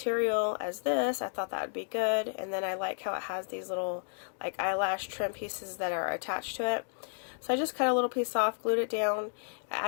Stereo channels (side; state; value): right; silent; digital silence